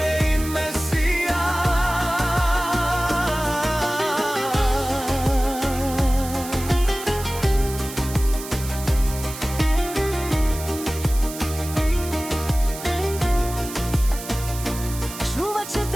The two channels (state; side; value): noise; right; hiss, 11 dB below the sound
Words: ime sija. Čuvat će